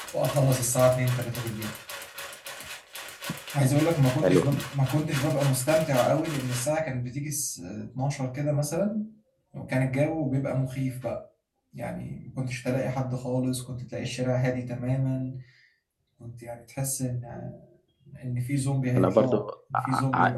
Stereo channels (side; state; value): both; identical; correlation 1.00